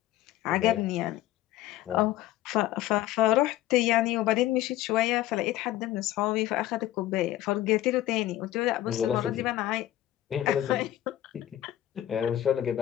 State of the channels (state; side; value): quieter; right; 13.9 dB